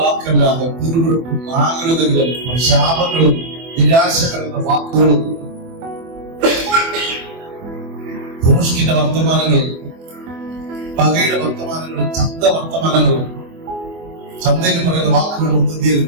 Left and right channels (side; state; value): left; late; 24 ms